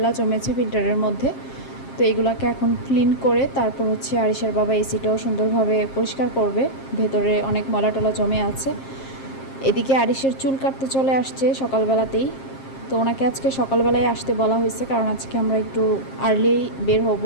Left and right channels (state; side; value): late; right; 7.5 ms